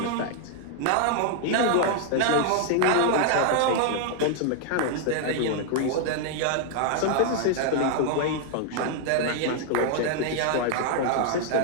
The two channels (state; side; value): different; both; correlation -0.01